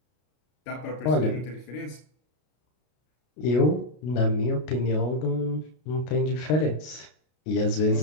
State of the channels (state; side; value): late; right; 33 ms